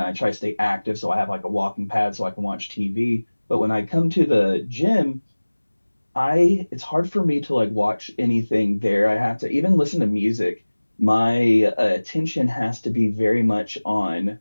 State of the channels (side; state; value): both; inverted; correlation -1.00